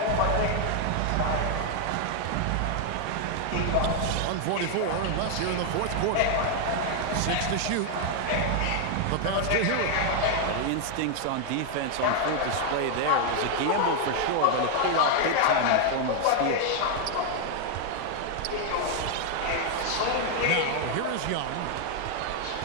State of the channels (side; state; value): both; different; correlation 0.00